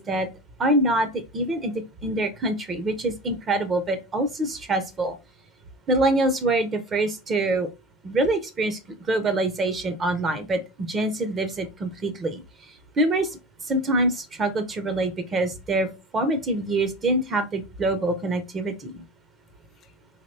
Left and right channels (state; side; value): normal; both; correlation 0.36